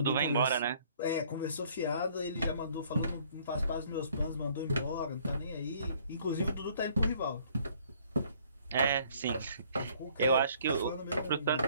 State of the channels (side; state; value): both; inverted; correlation -0.59